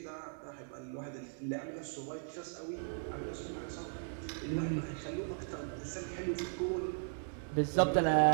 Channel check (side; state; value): left; silent; 53 dB below the other